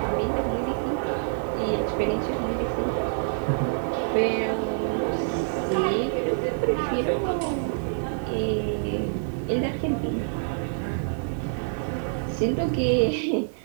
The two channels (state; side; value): silent; left; 56 dB below the other